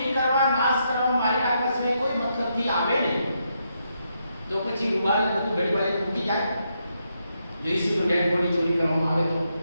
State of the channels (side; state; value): both; inverted; correlation -0.80